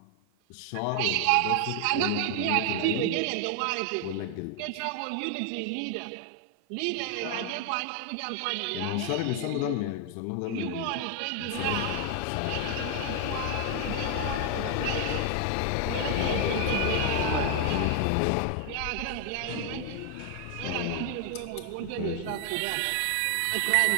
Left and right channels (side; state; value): both; different; correlation 0.00